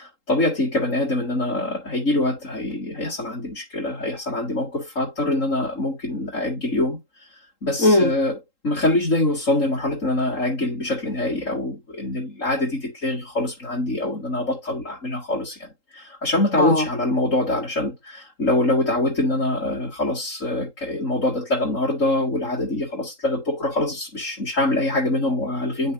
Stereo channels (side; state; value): right; late; 3.8 ms